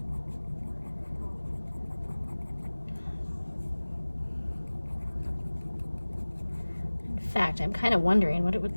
In fact, I'm kind of wondering what it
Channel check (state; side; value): inverted; both; correlation -1.00